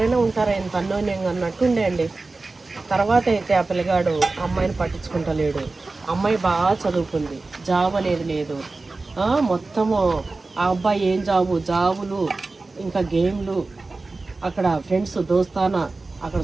ఉంటారా ఇంత అన్యోన్యంగా అన్నట్టుండే అండి. తర్వాత అయితే ఆ పిల్లగాడు అమ్మాయిని పట్టించుకుంటలేడు. అమ్మాయి బాగా చదువుకుంది, జాబ్ అనేది లేదు. మొత్తము ఆ అబ్బాయి ఏం జాబులు ఇంకా గేమ్లు, అక్కడ ఫ్రెండ్స్ దోస్తానా, అక్కడ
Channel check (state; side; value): quieter; left; 3.5 dB